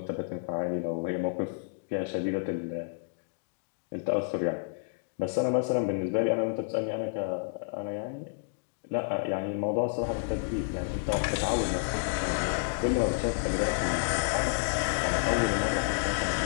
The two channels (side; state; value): right; silent; digital silence